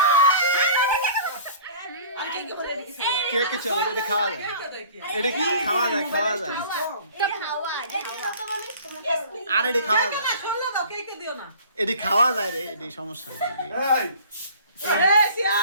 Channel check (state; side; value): inverted; both; correlation -0.47